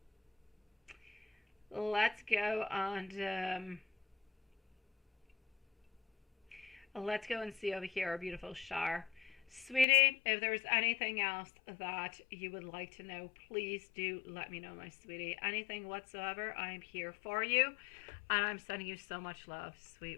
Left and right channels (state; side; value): drops out; right; at 9.9 s